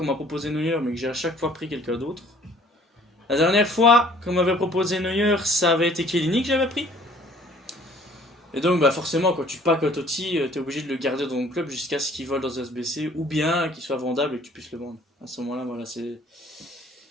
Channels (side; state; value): both; normal; correlation 0.55